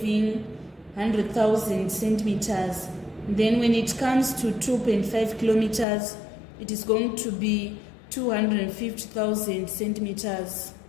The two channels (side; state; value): right; drops out; at 5.9 s